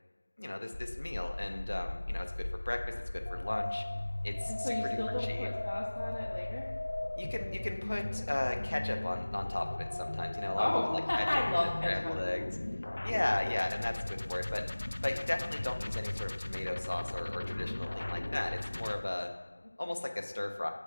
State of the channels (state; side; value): inverted; both; correlation -1.00